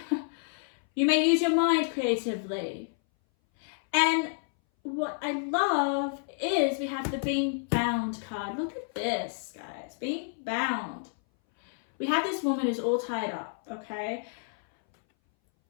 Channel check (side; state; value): right; silent; 58 dB below the other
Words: you may use your mind creatively. And what I love is we have the being bound card. Look at this, guys, being bound. We have this woman who's all tied up, okay?